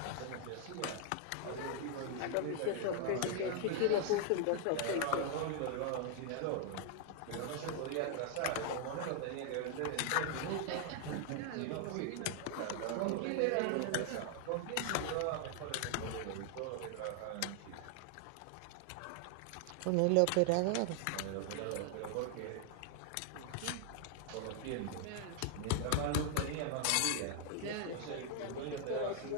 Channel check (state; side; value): different; both; correlation 0.00